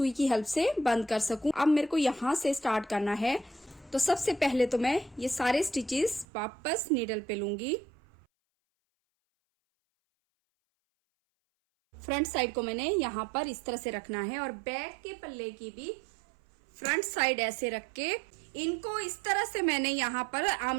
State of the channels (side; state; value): left; drops out; at 6.2 s